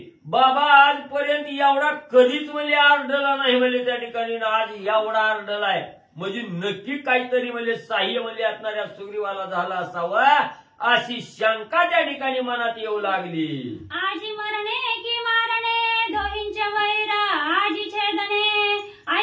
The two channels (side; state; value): both; identical; correlation 1.00